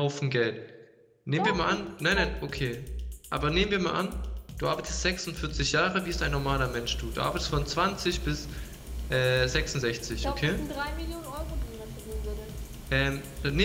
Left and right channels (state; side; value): identical; both; correlation 1.00